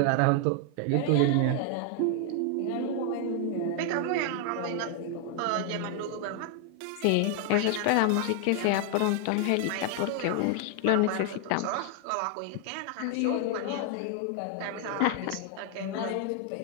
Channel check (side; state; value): both; different; correlation 0.00